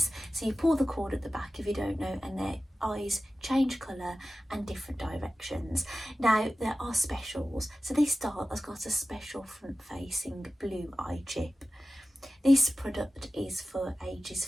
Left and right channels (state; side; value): normal; both; correlation 0.96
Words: So you pull the cord at the back if you don't know, and their eyes change colour and different directions. Now there are specials. So this doll has got a special front facing blue eye chip. This product is for ages